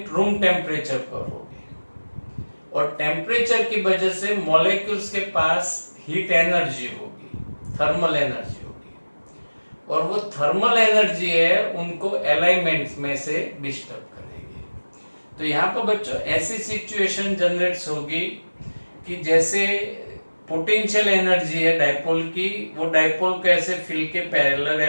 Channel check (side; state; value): both; inverted; correlation -1.00